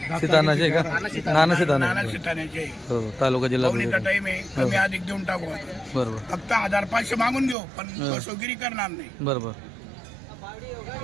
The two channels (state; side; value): drops out; left; at 7.6 s